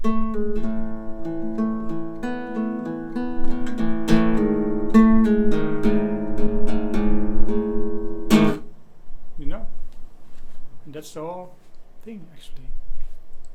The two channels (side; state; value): both; identical; correlation 1.00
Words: You know? And that's the whole thing actually.